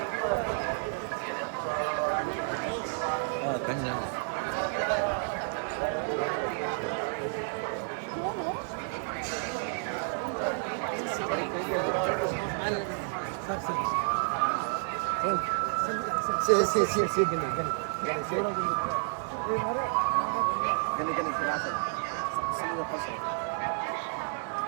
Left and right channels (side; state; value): left; silent; digital silence